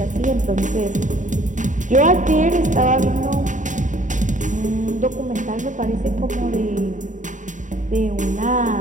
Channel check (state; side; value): late; left; 0.36 ms